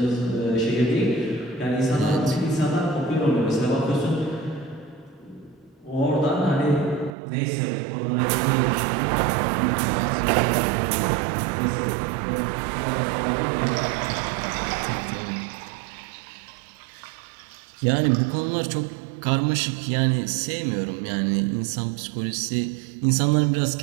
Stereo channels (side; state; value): left; drops out; at 7.2 s